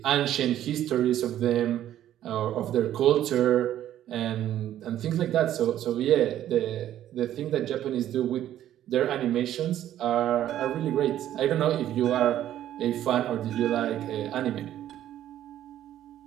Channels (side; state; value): left; quieter; 12.0 dB